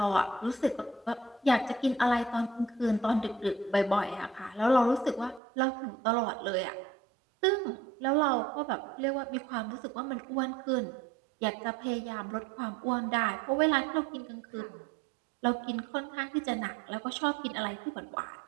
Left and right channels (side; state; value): left; drops out; at 5.4 s